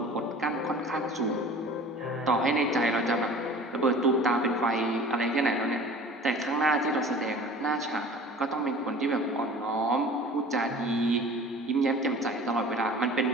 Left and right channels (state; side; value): normal; both; correlation 0.43